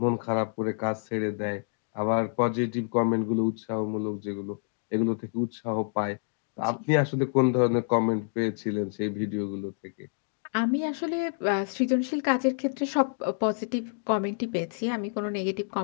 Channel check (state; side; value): silent; right; digital silence